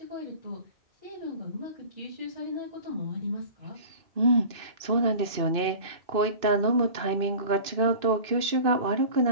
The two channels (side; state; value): left; late; 2.6 ms